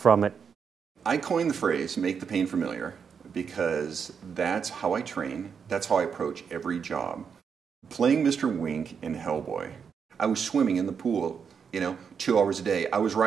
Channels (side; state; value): left; quieter; 6.6 dB